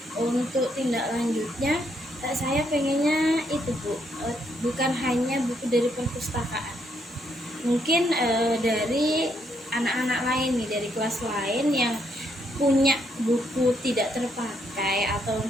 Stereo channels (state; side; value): normal; both; correlation 0.74